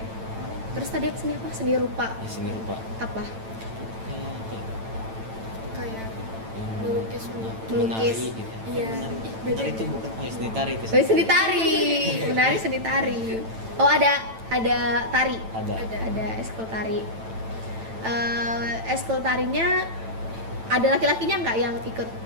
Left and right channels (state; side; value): late; left; 9.0 ms